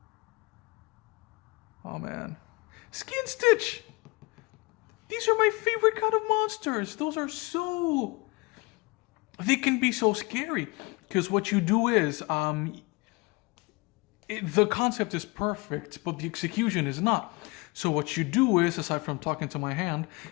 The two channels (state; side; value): quieter; right; 25.7 dB